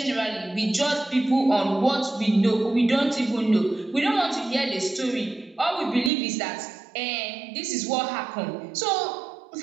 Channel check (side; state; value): left; drops out; at 6.1 s